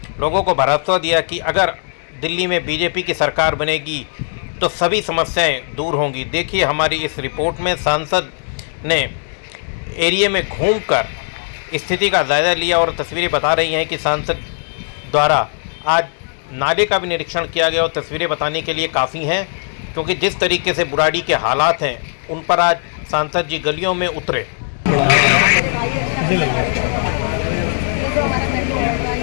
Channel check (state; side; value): silent; right; digital silence